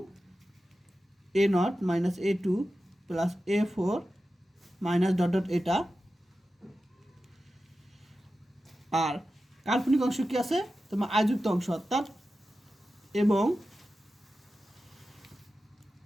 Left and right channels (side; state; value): both; normal; correlation 0.93